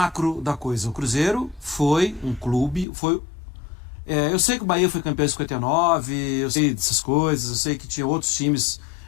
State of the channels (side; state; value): right; drops out; at 2.9 s